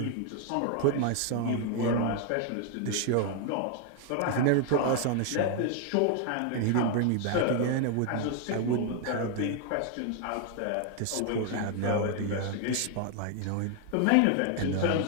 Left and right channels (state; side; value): different; both; correlation 0.00